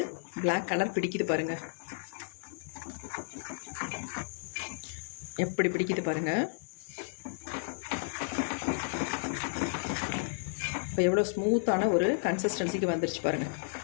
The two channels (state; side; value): silent; right; digital silence